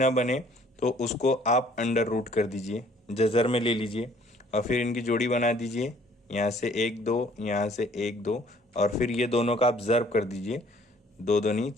बने, तो उसको आप अंडर रूट कर दीजिए, जज़र में ले लीजिए और फिर इनकी जोड़ी बना दीजिए। यहाँ से 1 2, यहाँ से 1 2, और फिर ये दोनों का आप ज़र्ब कर दीजिए, 2 दूनी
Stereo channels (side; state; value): both; normal; correlation 0.58